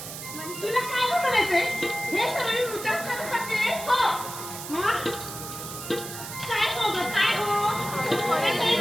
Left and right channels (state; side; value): noise; right; hiss, 9 dB below the sound